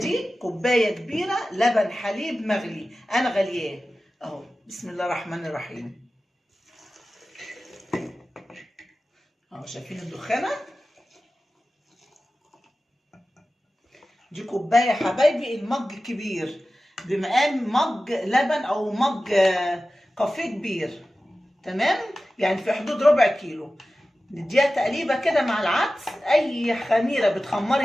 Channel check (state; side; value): normal; both; correlation 0.95